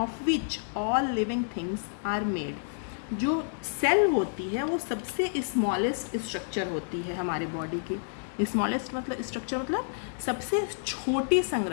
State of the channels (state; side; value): silent; right; digital silence